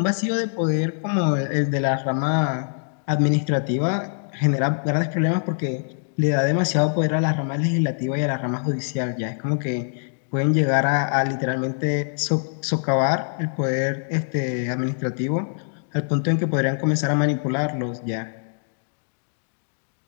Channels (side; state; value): right; silent; digital silence